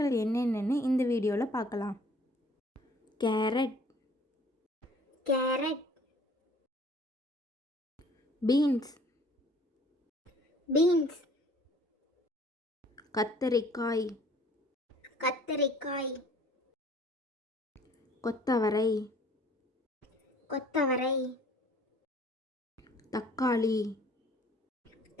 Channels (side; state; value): both; normal; correlation 0.55